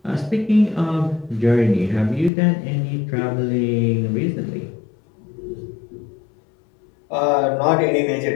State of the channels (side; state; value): right; drops out; at 2.3 s